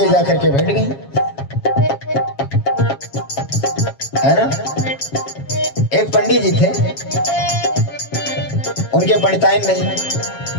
जाकर के बैठ गई, है ना। एक पंडित जी थे, उनके पंडिताइन नहीं,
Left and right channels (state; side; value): late; right; 7.3 ms